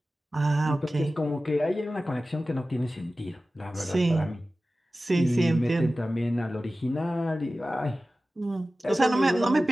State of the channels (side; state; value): both; normal; correlation 0.96